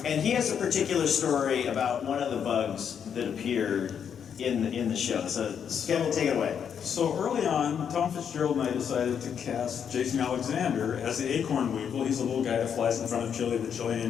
And he has a particular story about one of the bugs that appeared in the show. So Kevin, take it away. So early on, Tom Fitzgerald and I decided to cast Jason Alexander as the acorn weevil. He's a little guy that flies in front of Chili, the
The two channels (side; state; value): right; quieter; 7.8 dB